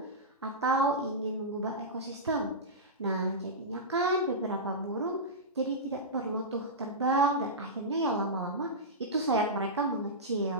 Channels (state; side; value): normal; both; correlation -0.14